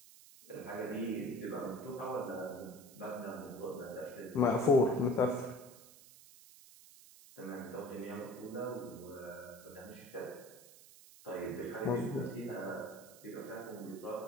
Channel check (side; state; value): right; noise; hiss, 20 dB below the sound